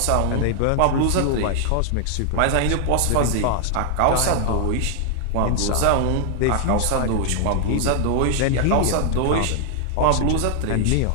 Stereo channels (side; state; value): both; different; correlation 0.00